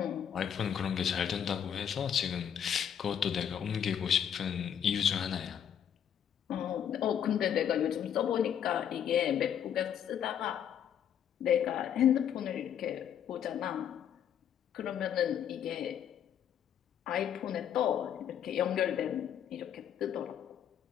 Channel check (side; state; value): right; quieter; 9.1 dB